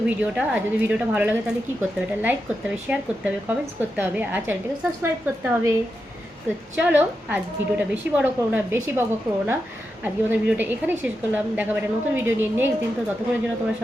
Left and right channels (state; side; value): normal; both; correlation 0.88